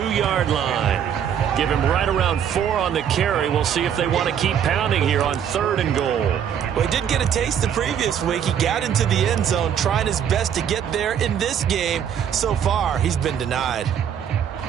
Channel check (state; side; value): quieter; left; 8.7 dB